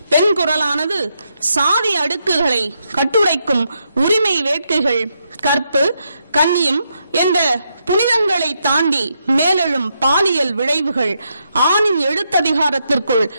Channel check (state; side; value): inverted; both; correlation -0.80